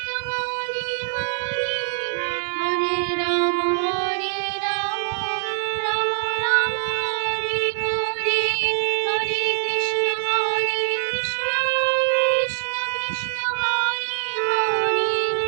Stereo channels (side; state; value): left; silent; digital silence